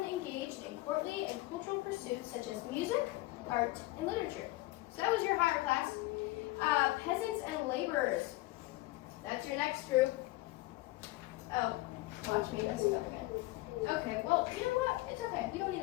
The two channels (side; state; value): right; quieter; 19.4 dB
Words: engaged in courtly and cultural pursuits such as music, art, and literature. So that was your higher class. Peasants and laborers. That's your next group. Oh, watch me mess it up again. Okay, well, you know what? It's okay. You don't need